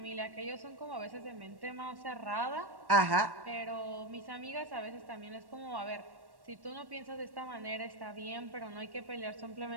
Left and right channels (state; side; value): late; left; 1.1 ms